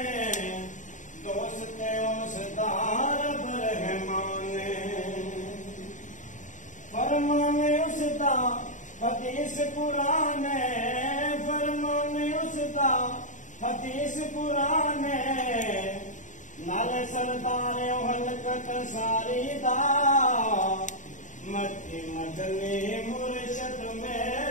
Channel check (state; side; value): late; right; 0.36 ms